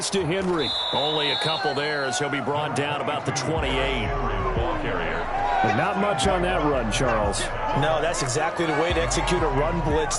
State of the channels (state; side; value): identical; both; correlation 1.00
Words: to Henry. Only a couple there as he'll be brought down about the 28. But not much on that run, Charles. No, that's exactly the way to execute a run blitz